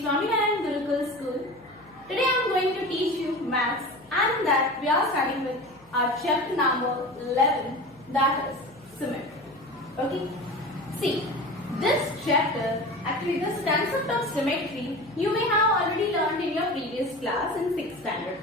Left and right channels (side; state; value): left; noise; hum, 28 dB below the sound